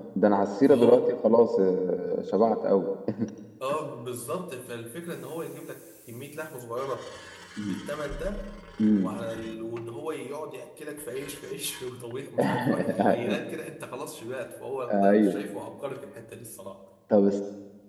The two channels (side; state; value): both; identical; correlation 1.00